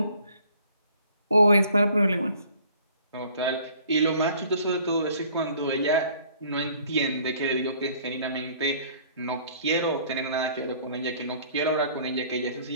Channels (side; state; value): both; inverted; correlation -0.56